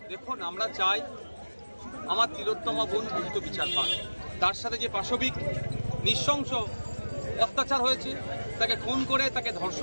দেখুন, আমরা চাই আমার তিলোত্তমা বোন দ্রুত বিচার পান। তার সাথে যে পাশবিক নৃশংস অত্যাচার হয়েছে, তাকে খুন করে, তাকে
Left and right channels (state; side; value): inverted; both; correlation -1.00